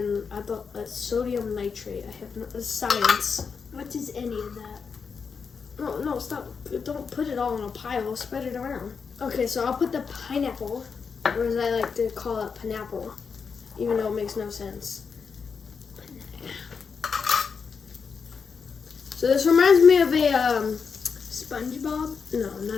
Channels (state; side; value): quieter; right; 5.7 dB